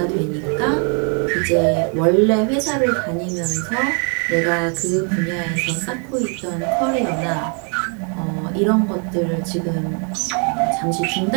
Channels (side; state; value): left; quieter; 39.3 dB